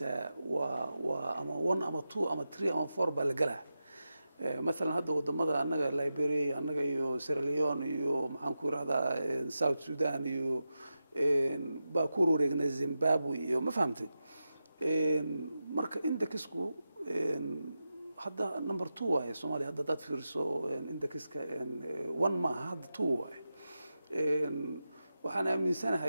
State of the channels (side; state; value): both; inverted; correlation -0.90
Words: waa ama 1 ama 2 ama 3 ama 4 baa la galaa مثلا هذا ودمada anaga Liberia anaga iyo Sierra Leone iyo maxaan ku raahdaa South Sudan iyo baa ku wareegnay Zimbabwe iyo ma fahamtay marka indexku hadda number 2 waaye Soomaaliya hadda dad fiirso indexka 1 ma hadda 2 waaye waxaan